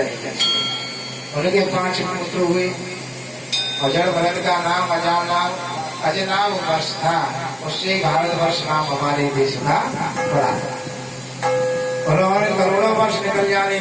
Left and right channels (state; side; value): identical; both; correlation 1.00